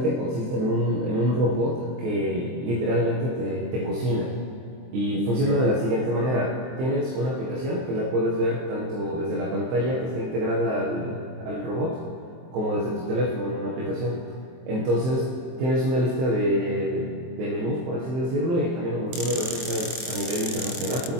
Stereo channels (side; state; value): left; late; 23 ms